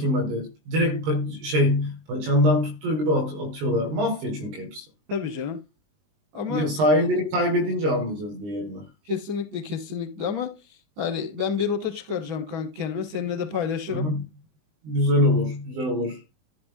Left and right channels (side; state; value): left; late; 19 ms